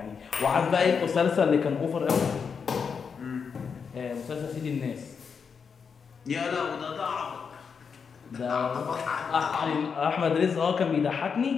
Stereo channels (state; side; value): quieter; right; 6.1 dB